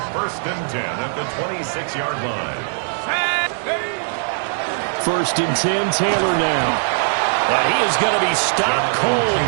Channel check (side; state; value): left; silent; digital silence